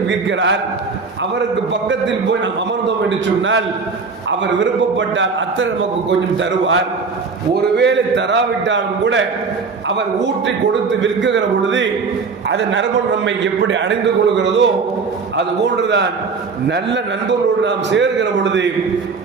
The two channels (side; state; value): left; quieter; 4.8 dB